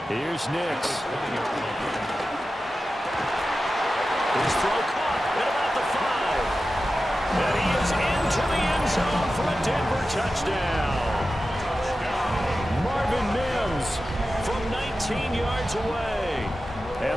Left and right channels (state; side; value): normal; both; correlation 0.93